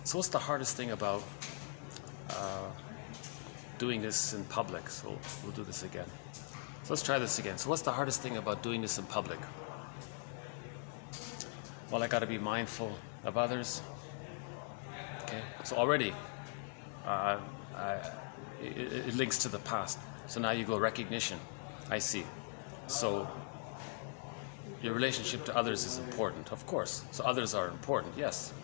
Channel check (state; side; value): silent; right; 51 dB below the other